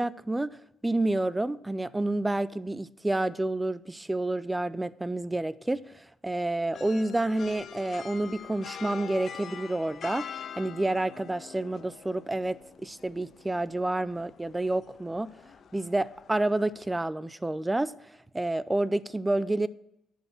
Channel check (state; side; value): normal; both; correlation 0.98